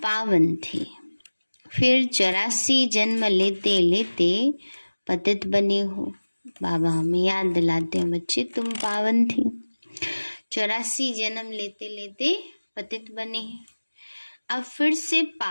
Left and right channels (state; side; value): inverted; both; correlation -1.00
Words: पावन थे, फिर 84 जन्म लेते लेते पतित बने हो। बाबा हमें याद दिलाते हैं, बच्चे तुम पावन थे, 84 जन्म लेते लेते पतित बने हैं, अब फिर से